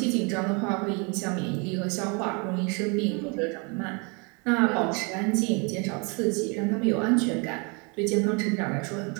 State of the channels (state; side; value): quieter; left; 32.1 dB